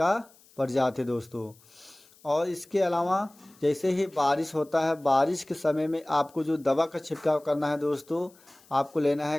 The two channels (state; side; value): noise; left; hiss, 28 dB below the sound